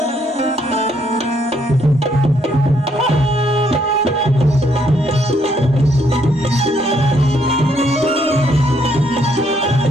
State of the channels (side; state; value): both; normal; correlation 0.71